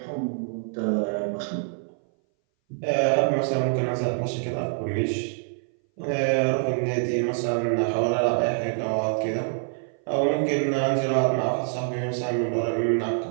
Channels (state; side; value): silent; left; 59 dB below the other